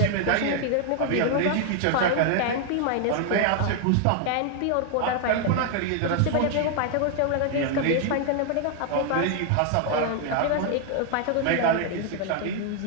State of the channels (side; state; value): both; different; correlation 0.00